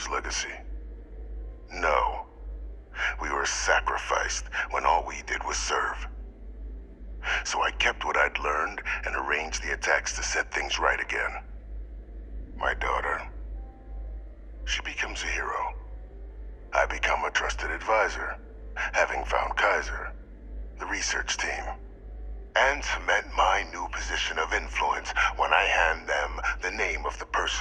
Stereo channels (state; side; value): identical; both; correlation 1.00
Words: legacy? No. We were sacrificed when all we did was serve. So I kept what I'd learned and arranged the attacks to set things right again. My daughter, she becomes a hero. I become a trusted advisor, having found Kaiser, the research team, and cement my new position of influence when I hand them the name of the